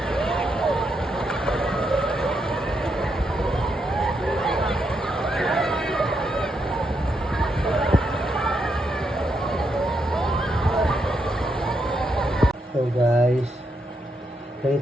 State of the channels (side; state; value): both; normal; correlation 0.80